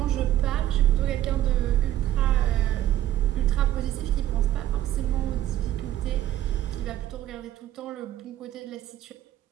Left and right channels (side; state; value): left; quieter; 12.8 dB